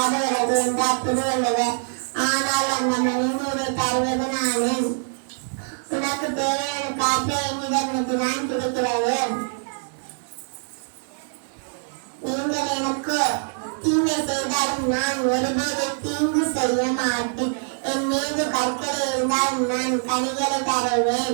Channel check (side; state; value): left; silent; 63 dB below the other